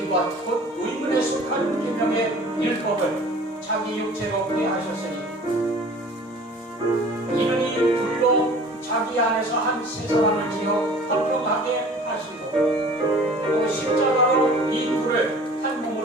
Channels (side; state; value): both; normal; correlation 0.46